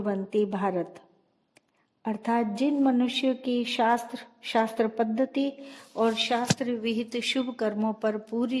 भारत, अर्थात जिन मनुष्यों की शास्त्र पद्धति और शास्त्र विहित शुभ कर्मों पर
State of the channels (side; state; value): both; identical; correlation 1.00